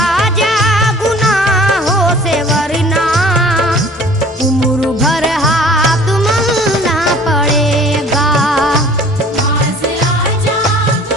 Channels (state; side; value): noise; left; hum, 28 dB below the sound